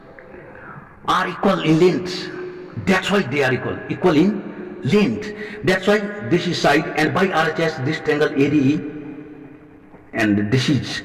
are equal in length. That's why they are equal in length. That's why this is side, and by RHS this triangle ADE and this is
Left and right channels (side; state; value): both; identical; correlation 1.00